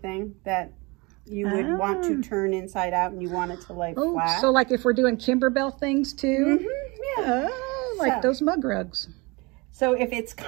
that you would want to turn inside out and you want it to lay flat. So like if we're doing Kimberbell things too? Mm-hmm, yeah. Oh, like those mug rugs. So if it's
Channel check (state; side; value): quieter; left; 26.4 dB